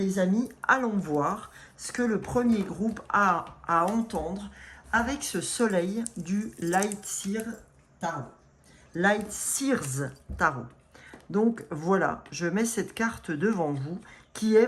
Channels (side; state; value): both; identical; correlation 1.00